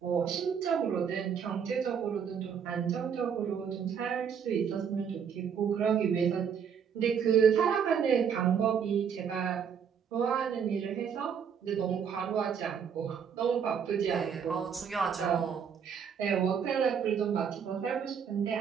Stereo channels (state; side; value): quieter; left; 7.3 dB